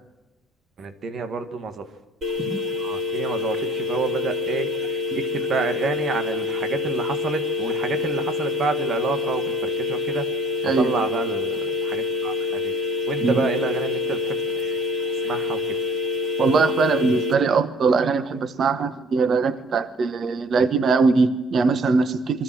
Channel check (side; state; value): both; normal; correlation 0.54